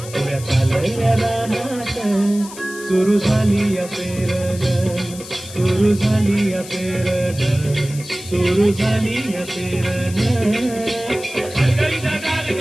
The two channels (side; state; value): left; noise; hiss, 14 dB below the sound